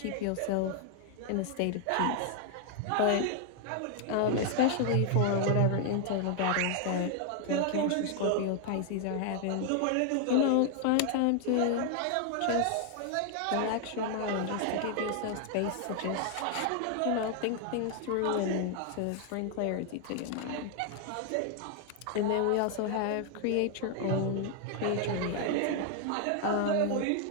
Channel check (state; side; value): different; both; correlation 0.00